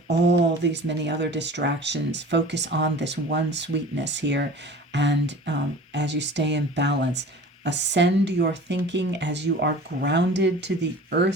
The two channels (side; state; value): both; normal; correlation 0.41